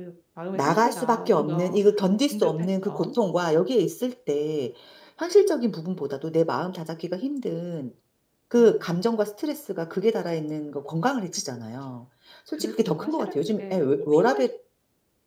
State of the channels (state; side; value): identical; both; correlation 1.00